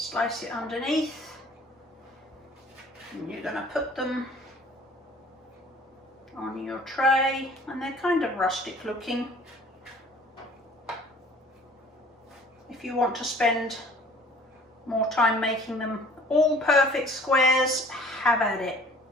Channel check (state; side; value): normal; both; correlation 0.51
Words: it underneath, and you're going to put them on your tray, and they're kind of rustic looking. If you want to spend more time making them all perfect squares, have at it.